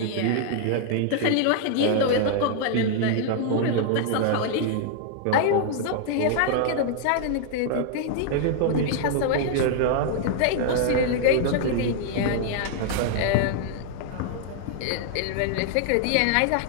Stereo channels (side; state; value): both; different; correlation 0.00